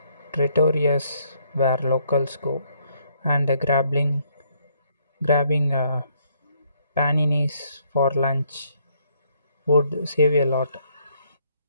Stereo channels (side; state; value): both; inverted; correlation -0.70